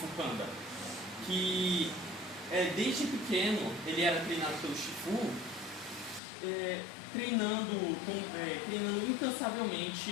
Panda, que desde pequeno ele era treinado pelo Shifu, treinando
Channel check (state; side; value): drops out; right; at 6.2 s